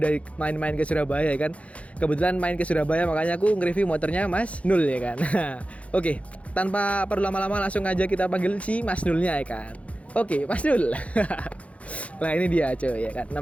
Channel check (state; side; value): late; right; 0.064 ms